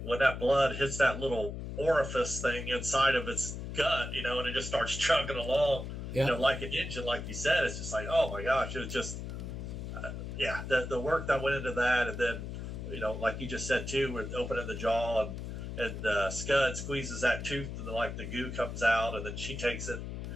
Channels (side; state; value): left; noise; hum, 7 dB below the sound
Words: when that blood hits that little orifice thing inside of its gut, and it just starts chugging along. Like an engine, like you said. It's just like, oh my gosh, it was just, the work that went into that. And then, like you just said too, with opening the jaw, and Scud squeezes that tooth, and the goo comes out, and then she takes it